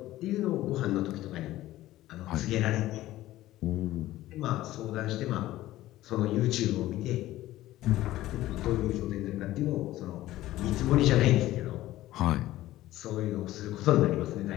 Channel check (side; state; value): right; quieter; 15.5 dB